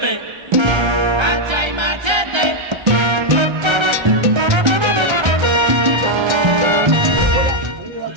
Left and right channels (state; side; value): late; left; 1.3 ms